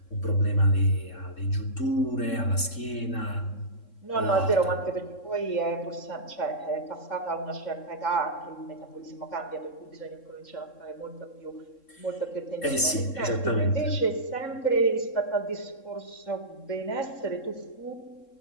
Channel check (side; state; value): right; late; 3.7 ms